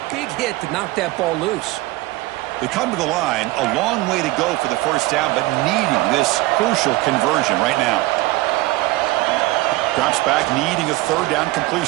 big hit to knock that ball loose. They come to the line. A long way to go for the first down, but needing this crucial conversion right now. Drops back, needing a third down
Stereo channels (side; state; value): left; quieter; 19.6 dB